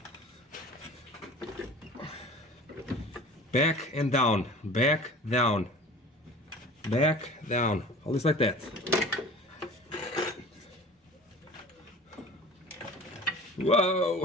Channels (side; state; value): both; normal; correlation 0.41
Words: Back and down, back, down, back, down, always like that.